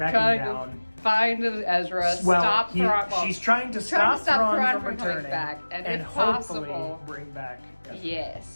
down, find Ezra, stop Thrawn. She's trying to stop Thrawn from returning, back, and if hopefully possible, bring back Ezra.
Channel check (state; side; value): inverted; both; correlation -1.00